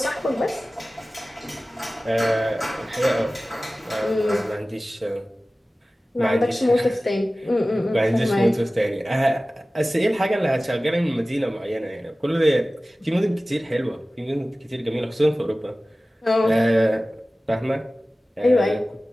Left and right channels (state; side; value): normal; both; correlation 0.97